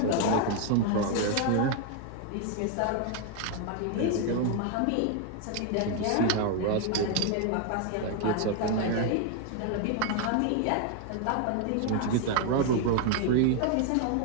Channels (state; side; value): different; both; correlation 0.00